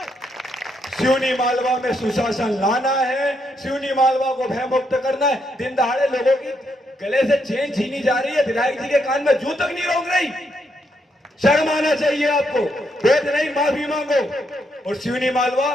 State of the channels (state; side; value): normal; both; correlation 0.77